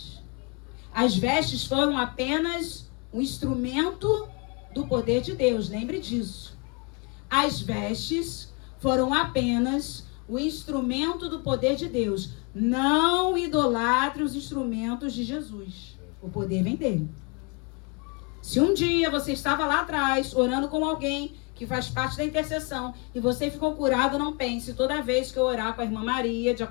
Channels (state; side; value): quieter; right; 31.4 dB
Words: As vestes foram apenas um instrumento do poder de Deus, lembre disso. As vestes foram apenas o instrumento do poder de Deus. Não idolatre os instrumentos de Jesus. O poder vem dele. Se um dia você estava lá atrás, orando com alguém que faz parte da intercessão, e você ficou curado, não pense: toda vez que eu orar com a irmã Maria,